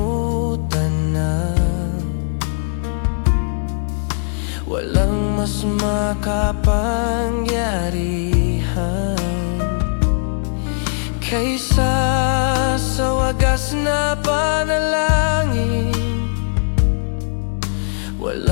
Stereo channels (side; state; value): right; silent; 66 dB below the other